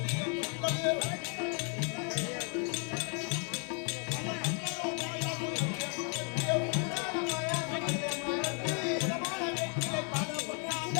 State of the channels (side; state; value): right; quieter; 39.7 dB